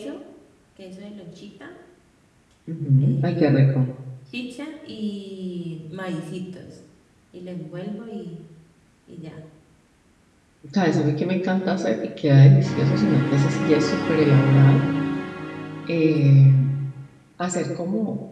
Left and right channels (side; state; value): both; identical; correlation 1.00